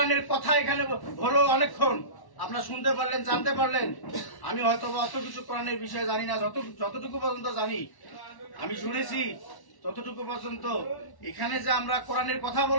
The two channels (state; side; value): late; right; 1.1 ms